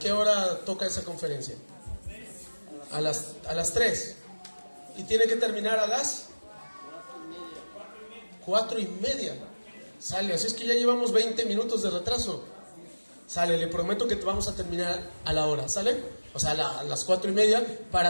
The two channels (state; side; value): inverted; both; correlation -1.00